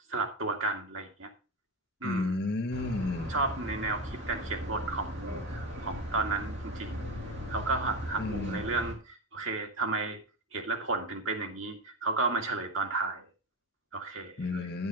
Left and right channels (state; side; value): normal; both; correlation 0.18